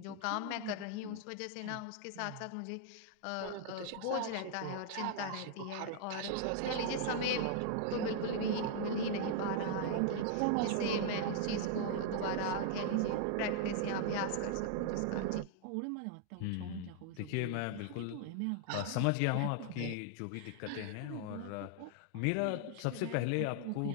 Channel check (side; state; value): both; different; correlation -0.01